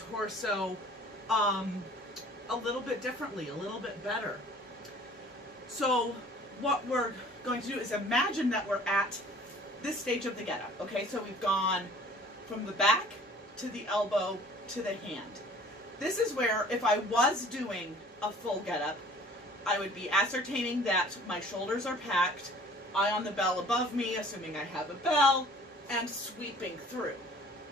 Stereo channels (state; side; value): normal; both; correlation 0.50